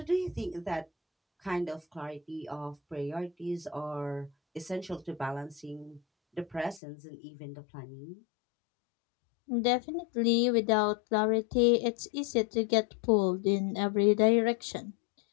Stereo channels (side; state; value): right; drops out; at 6.8 s